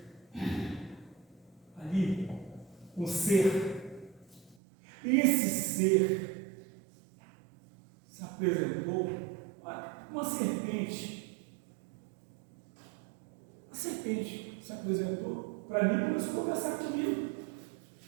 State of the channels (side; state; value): left; drops out; at 4.5 s